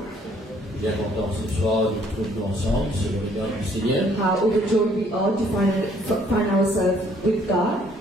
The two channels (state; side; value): normal; both; correlation 0.63